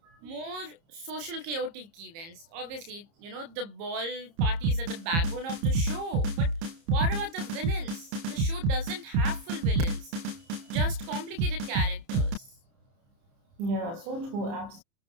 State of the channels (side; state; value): left; late; 30 ms